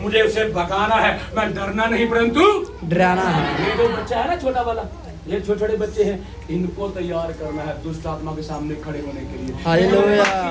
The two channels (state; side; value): identical; both; correlation 1.00